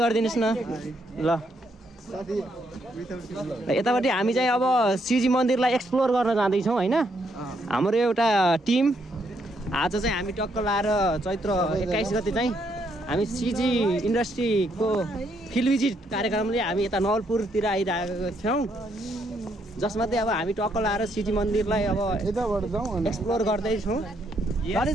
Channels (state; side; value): normal; both; correlation 0.74